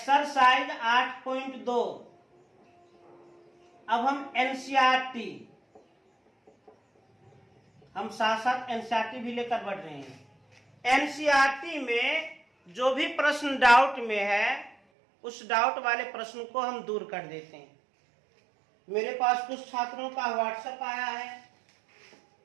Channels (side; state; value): left; drops out; at 14.8 s